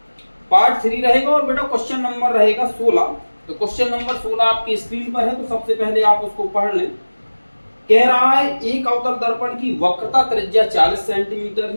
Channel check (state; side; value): inverted; both; correlation -1.00